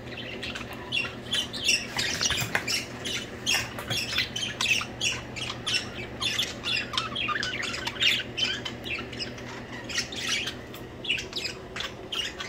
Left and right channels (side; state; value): right; noise; rumble, 25 dB below the sound